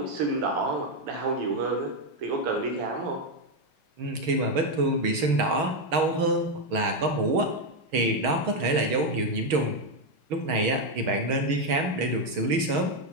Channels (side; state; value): left; late; 6.3 ms